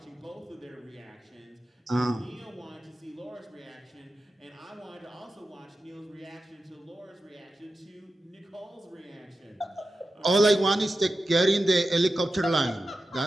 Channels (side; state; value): both; normal; correlation 0.92